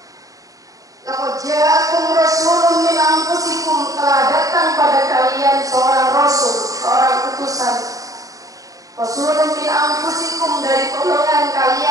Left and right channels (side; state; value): left; late; 0.17 ms